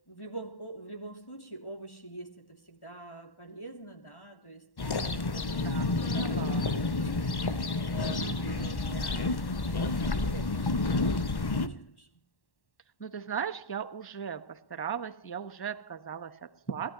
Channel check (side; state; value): right; late; 1.1 ms